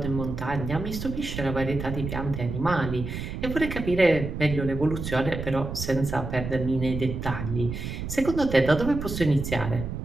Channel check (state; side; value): noise; right; rumble, 6 dB below the sound